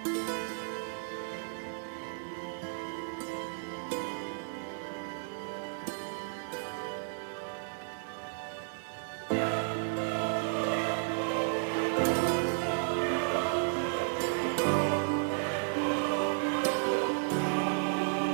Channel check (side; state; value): left; silent; digital silence